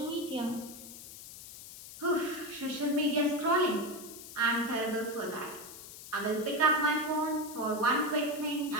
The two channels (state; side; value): noise; left; hiss, 14 dB below the sound